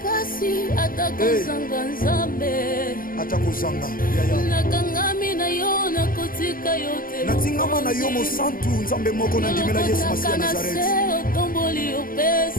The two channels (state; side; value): late; right; 0.41 ms